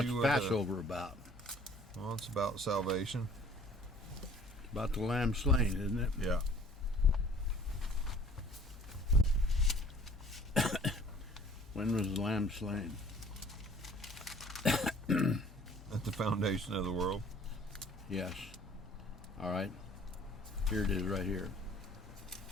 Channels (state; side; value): normal; both; correlation 0.53